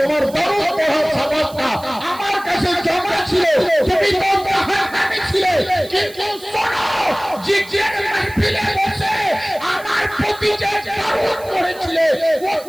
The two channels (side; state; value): right; noise; hiss, 20 dB below the sound